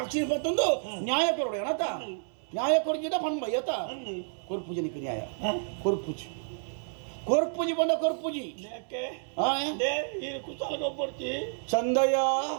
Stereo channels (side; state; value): left; silent; 58 dB below the other